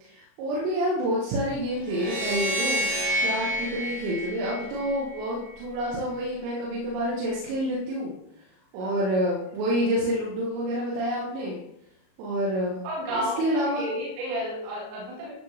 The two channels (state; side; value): late; left; 38 ms